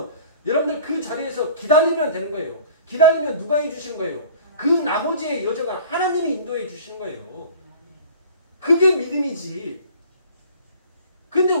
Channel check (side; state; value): both; inverted; correlation -0.45